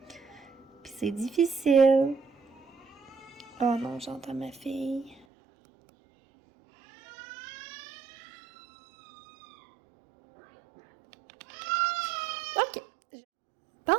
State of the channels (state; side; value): drops out; left; at 5.2 s